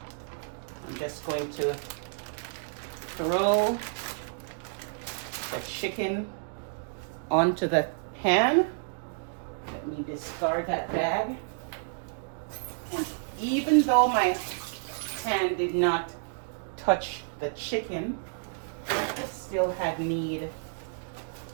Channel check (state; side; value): silent; left; digital silence